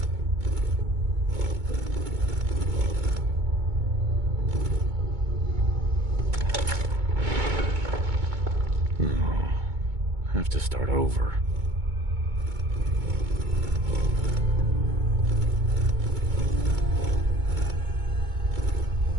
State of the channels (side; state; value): left; late; 2.2 ms